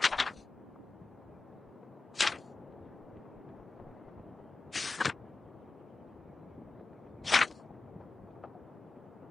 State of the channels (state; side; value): quieter; right; 3.8 dB